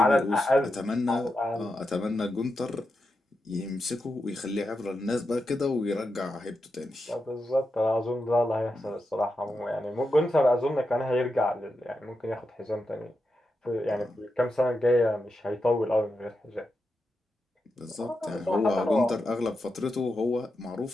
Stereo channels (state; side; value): normal; both; correlation 0.87